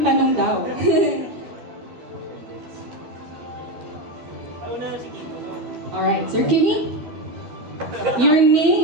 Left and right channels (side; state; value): left; late; 12 ms